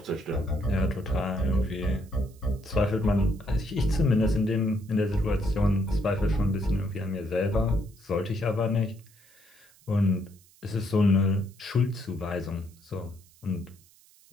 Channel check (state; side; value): noise; right; hiss, 28 dB below the sound